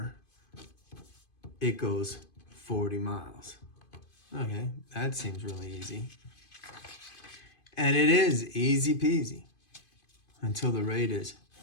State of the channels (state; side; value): late; right; 2.5 ms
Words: It goes 40 miles. Okay, that seems really easy. And it is easy peasy until the rate is